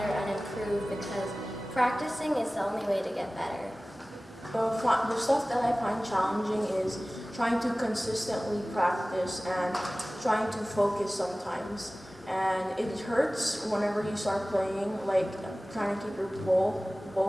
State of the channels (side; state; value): both; normal; correlation 0.98